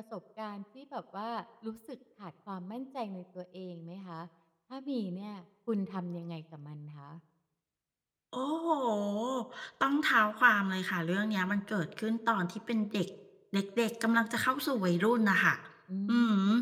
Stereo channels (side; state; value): both; identical; correlation 1.00